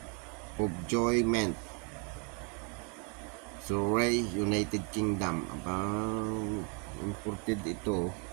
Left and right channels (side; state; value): left; quieter; 36.0 dB